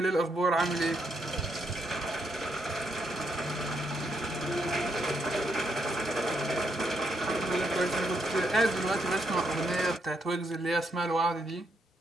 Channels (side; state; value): both; normal; correlation 0.77